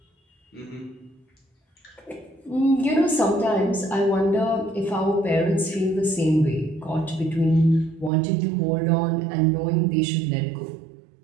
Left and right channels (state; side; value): drops out; left; at 8.1 s